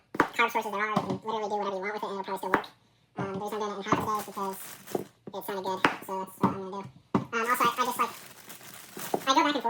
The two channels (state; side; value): identical; both; correlation 1.00